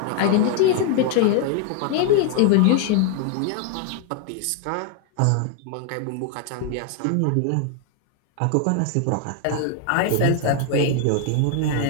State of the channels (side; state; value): both; different; correlation 0.00